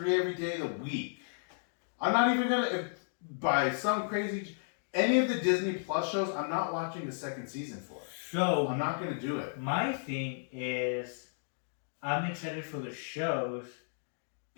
every day of the week. I'm not even gonna, by some crazy, any of the Disney Plus shows, I'm not watching the second season for. So I'm not gonna do it. my thing is, I'm excited for the shows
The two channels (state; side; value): silent; right; digital silence